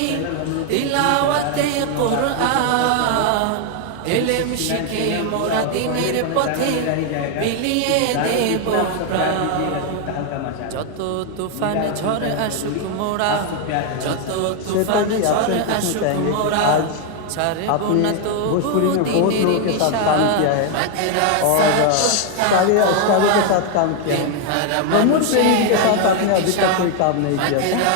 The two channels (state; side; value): different; both; correlation 0.01